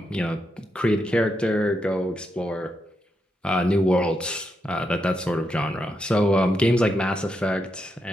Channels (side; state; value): both; normal; correlation 0.83